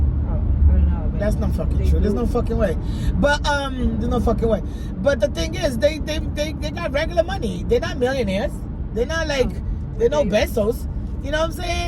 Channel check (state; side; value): identical; both; correlation 1.00